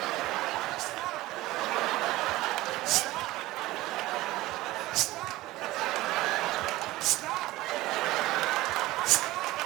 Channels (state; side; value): quieter; left; 18.0 dB